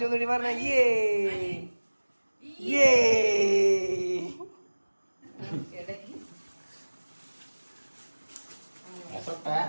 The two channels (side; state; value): both; inverted; correlation -1.00